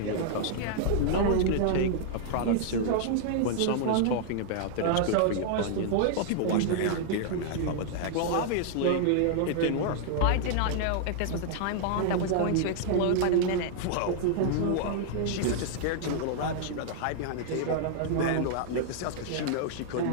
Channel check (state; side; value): different; both; correlation -0.01